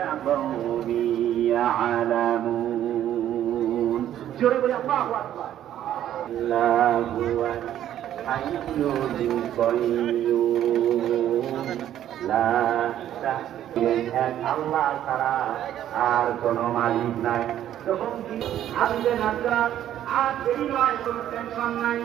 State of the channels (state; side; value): quieter; left; 11.5 dB